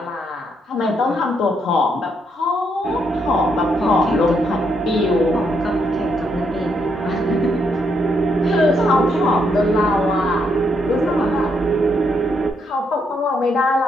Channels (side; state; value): both; normal; correlation 0.76